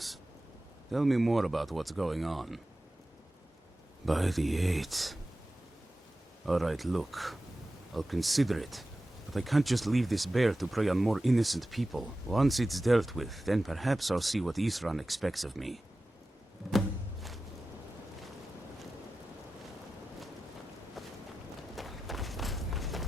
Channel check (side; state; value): both; normal; correlation 0.94